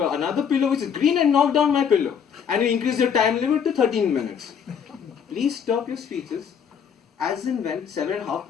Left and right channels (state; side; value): quieter; right; 7.4 dB